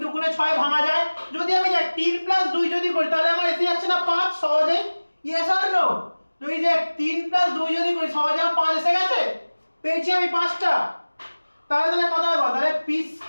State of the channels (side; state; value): both; inverted; correlation -1.00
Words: দুগুণে 6 ভাঙা যায়। যদি আমি দেখ 3 + 2 যদি করি তাহলে আমার এসে যাচ্ছে না 5 সহজে, ইয়েস অর নো? তুই দেখ 3 + 2 যদি করি সহজে আমার 5 এসে গেছে, পেয়েছি আমি 5টা। তাহলে কত হবে, তাহলে p